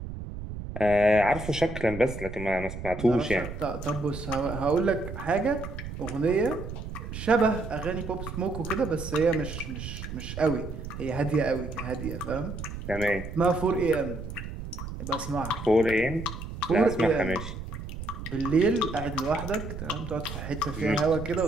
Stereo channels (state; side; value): noise; right; rumble, 8 dB below the sound